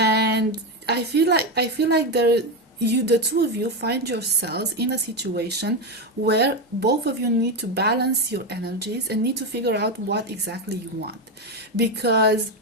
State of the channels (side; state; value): both; normal; correlation 0.12